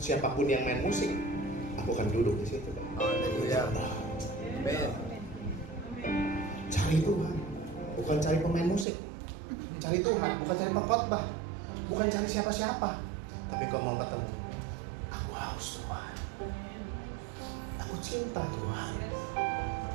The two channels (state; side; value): drops out; left; at 8.8 s